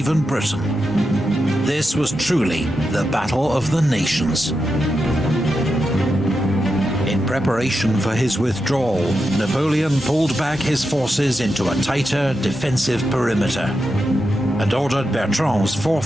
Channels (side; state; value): both; normal; correlation 0.87